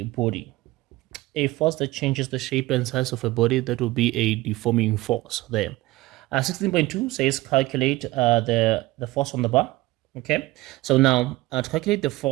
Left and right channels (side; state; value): left; quieter; 18.9 dB